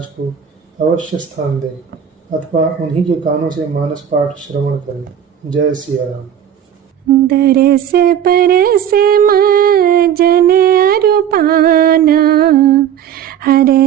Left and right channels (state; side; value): quieter; left; 9.4 dB